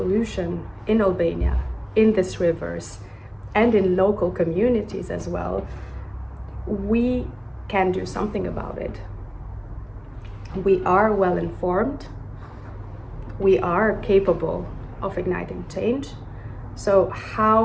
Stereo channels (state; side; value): identical; both; correlation 1.00